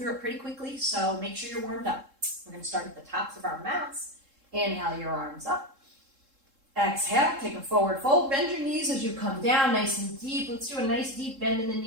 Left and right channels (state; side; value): late; left; 3.7 ms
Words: it pretty quickly, so make sure you're warmed up. We're going to start at the tops of our mats. Inhale your arms up. Exhale, take a forward fold. Bend your knees as you come down nice and deep. Let's do a nice deep bend in the